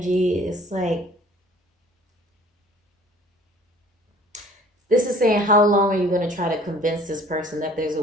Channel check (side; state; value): both; normal; correlation 0.51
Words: It's like, this is saying, how long are you going to try to convince this person that there's a